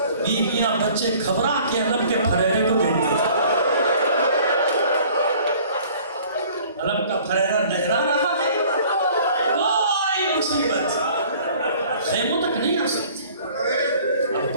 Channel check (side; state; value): both; inverted; correlation -0.52